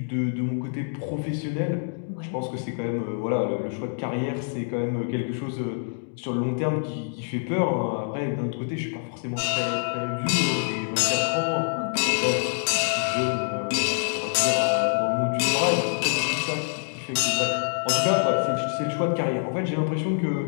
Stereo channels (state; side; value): silent; right; digital silence